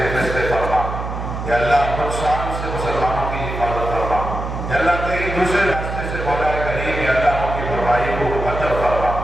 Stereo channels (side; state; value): right; noise; hum, 6 dB below the sound